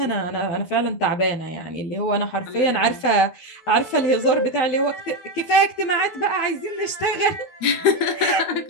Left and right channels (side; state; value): right; late; 12 ms